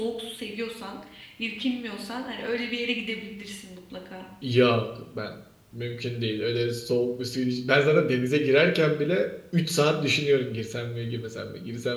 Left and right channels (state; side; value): identical; both; correlation 1.00